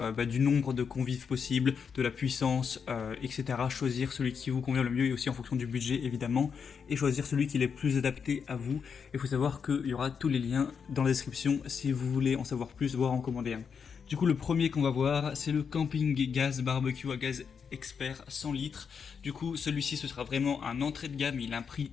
du nombre de convives possible, de la puissance, etc. Choisir celui qui vous convient le mieux et aussi en fonction du budget, évidemment. Et choisir celui qui est le plus adapté à vous. Il faut savoir qu'il y aura tous les liens dans la description si vous voulez en savoir plus, voire en commander un. Du coup, le premier qu'on va voir, c'est le Camping Gas Barbecue à gaz expert 100 litres. Du coup, celui-ci, ce sera vraiment un entrée de gamme. Il a un prix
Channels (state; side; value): quieter; right; 6.4 dB